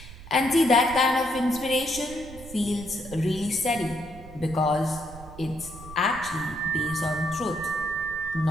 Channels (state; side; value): noise; right; rumble, 15 dB below the sound